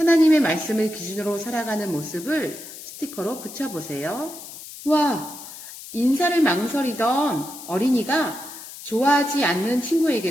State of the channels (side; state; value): left; noise; hiss, 14 dB below the sound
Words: 말씀을 기준으로 살아가는 모습을 스티커로 붙여보세요. 와, 인사를 망설이던 어린이가 좋아하지 않는